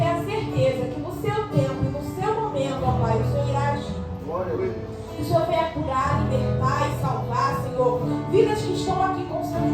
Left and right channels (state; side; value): identical; both; correlation 1.00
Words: a certeza que no seu tempo e no seu momento, ó Pai, o Senhor irá agir. Que o Senhor venha curar, libertar e salvar, Senhor, vidas que estão aqui com seus